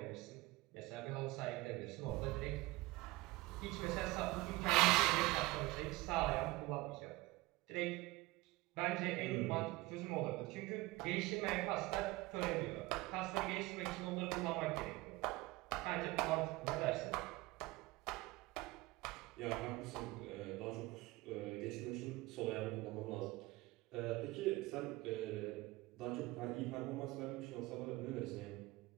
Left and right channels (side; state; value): left; quieter; 20.8 dB